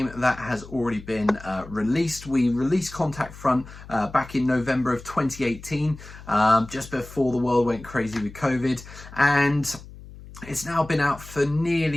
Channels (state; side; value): noise; left; hum, 17 dB below the sound